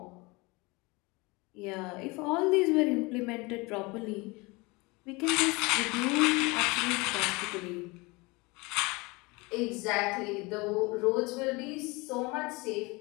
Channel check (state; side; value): quieter; right; 25.3 dB